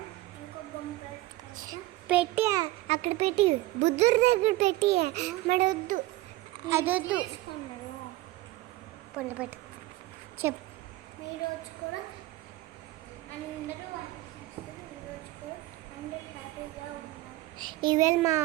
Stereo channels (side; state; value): left; quieter; 17.9 dB